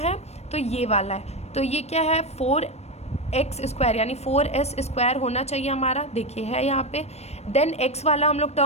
तो ये वाला है, तो ये क्या है 4x स्क्वायर, यानी 4s स्क्वायर होना चाहिए हमारा, देखिए है यहाँ पे। देन x वाला हम लोग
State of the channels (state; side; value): late; right; 0.31 ms